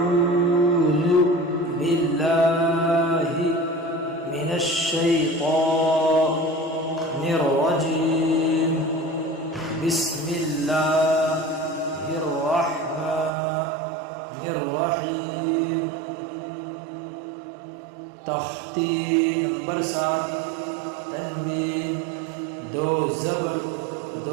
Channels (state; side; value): drops out; left; at 13.3 s